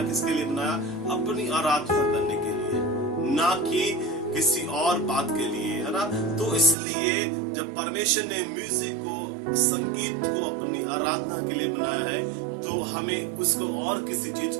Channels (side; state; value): left; drops out; at 6.8 s